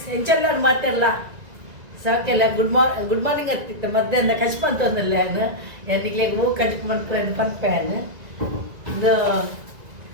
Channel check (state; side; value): late; left; 1.9 ms